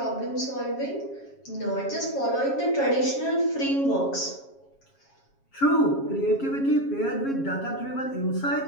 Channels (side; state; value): right; late; 7.3 ms